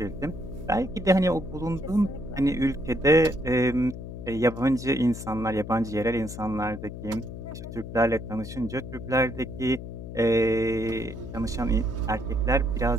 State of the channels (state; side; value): noise; left; hum, 10 dB below the sound